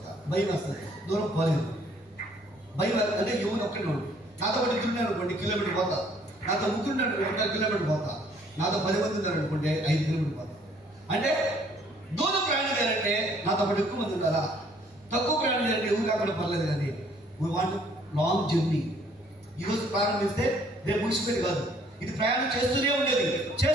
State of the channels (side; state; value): both; normal; correlation 0.61